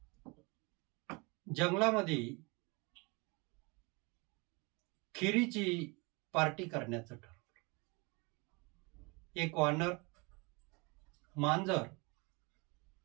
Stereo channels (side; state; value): left; quieter; 28.4 dB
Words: जंगलामध्ये खिरीची पार्टी करण्याचं ठरवलं. एक वानर, मांजर,